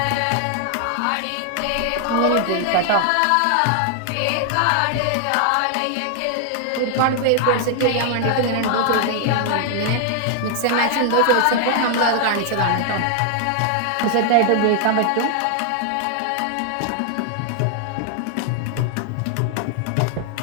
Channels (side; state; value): both; different; correlation 0.00